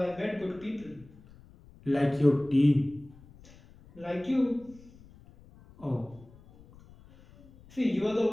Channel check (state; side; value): noise; left; rumble, 24 dB below the sound